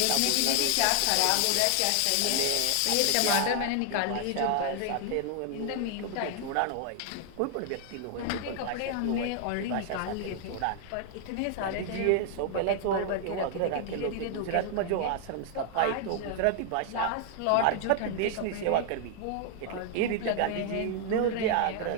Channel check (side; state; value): both; different; correlation 0.00